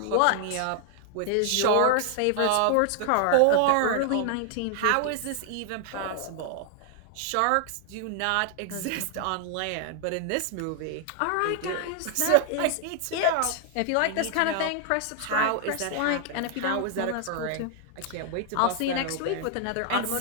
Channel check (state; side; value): different; both; correlation 0.00